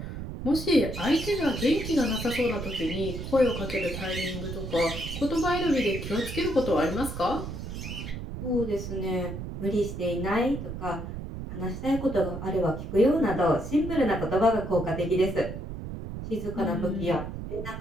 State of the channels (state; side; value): noise; right; rumble, 7 dB below the sound